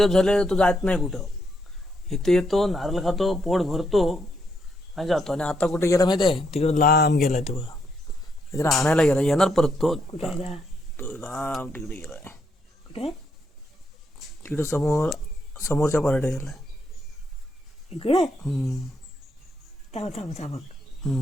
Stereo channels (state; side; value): normal; both; correlation 0.77